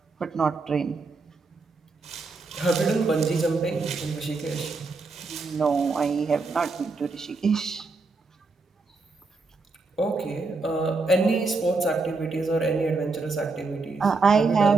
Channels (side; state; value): left; quieter; 3.8 dB